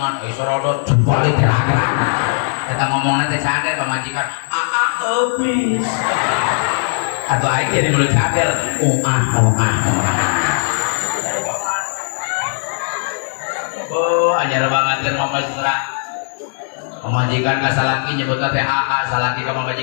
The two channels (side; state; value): right; silent; digital silence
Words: sorodot jempali gerak-gerak. Eta ngomongna teh cadel pamajikan. Habis. Atau aing jadi mulut cadel. Oh, anyar banget mah mesra. Pemajikan ka salaki nyebutna teh aa, salaki ka